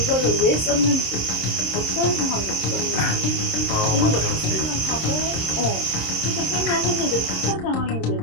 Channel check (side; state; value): right; late; 26 ms